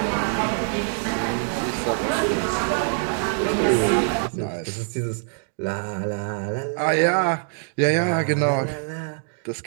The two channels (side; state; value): left; silent; digital silence